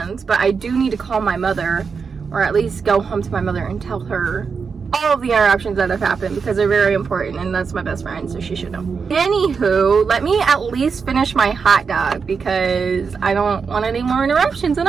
But I do need to call my mother, or at least go home to my mother and tell her all of the interruptions that have happened, because they're very important, and that's my best friend, so she should know. Anywho, let me at least finish my hot dog, because I don't want any more interruptions,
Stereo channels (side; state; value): left; quieter; 5.5 dB